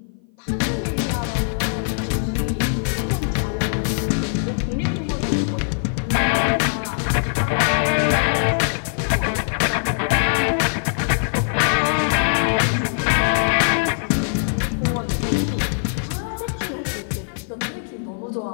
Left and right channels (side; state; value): right; silent; 56 dB below the other